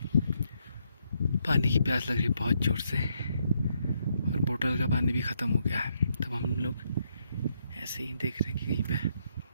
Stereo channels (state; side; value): inverted; both; correlation -0.76